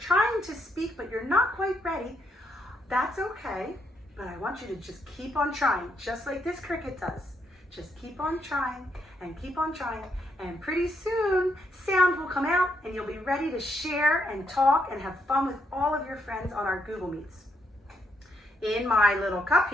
to speak but you're not quite ready, that's okay. But I want you to just keep on trying, just like this cricket does. Just keep on trying, and pretty soon sound will come out and you'll be ready to share and talk and have fun with all of your friends on our Google Meets. In my little cup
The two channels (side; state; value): both; normal; correlation 0.76